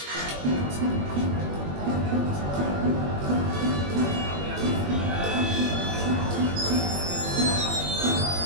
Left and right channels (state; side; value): late; left; 21 ms